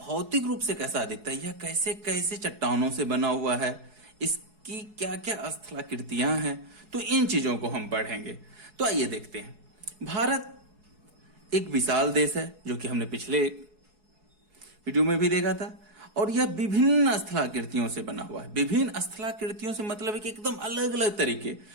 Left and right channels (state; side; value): late; left; 4.7 ms